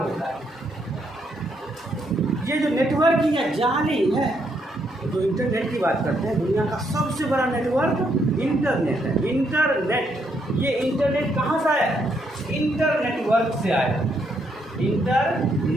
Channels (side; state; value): both; normal; correlation 0.75